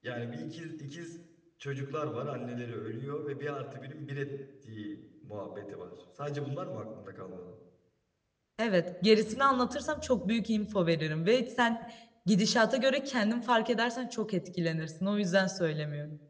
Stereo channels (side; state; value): both; identical; correlation 1.00